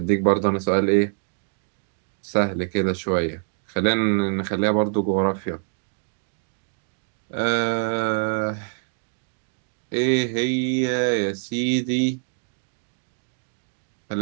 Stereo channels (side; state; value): left; silent; digital silence